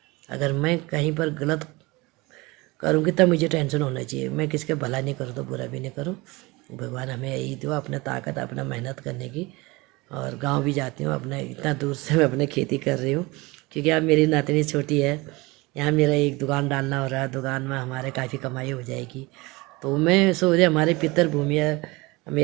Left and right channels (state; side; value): quieter; left; 23.4 dB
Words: अगर मैं कहीं पर गलत करूँगी तब मुझे टेंशन होना चाहिए। मैं किसके भला नहीं करूँ तो बुरा भी नहीं करूँ। भगवान हमें यही दो, अपना ताकत, अपना मेहनत करने की। और गांव भी जाती हूँ, अपने इतना दूर से मैं अपने खेती कर रही हूँ, क्योंकि अब मेरी नातनी छोटी है। यहाँ मेरा एक दुकान डालना हो रहा है, दुकान में हमारे काफ़ी कमाई हो जाएगी। तो मैं सोच रही, हमारे पितर भूमि है,